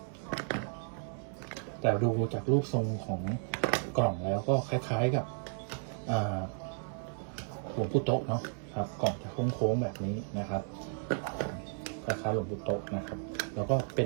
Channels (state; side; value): silent; left; 55 dB below the other